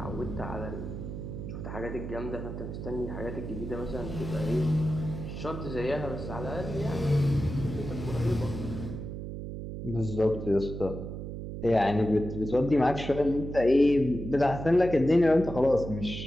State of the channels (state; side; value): noise; right; hum, 7 dB below the sound